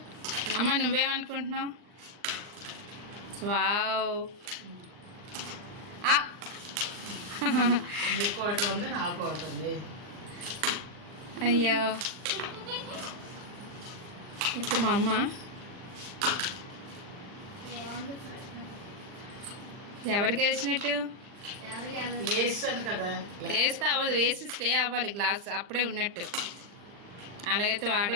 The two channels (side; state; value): left; late; 39 ms